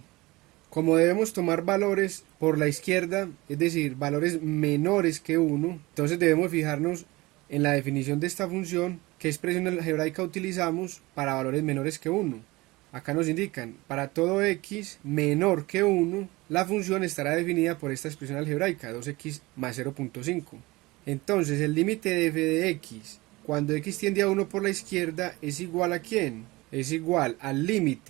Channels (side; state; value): left; quieter; 21.4 dB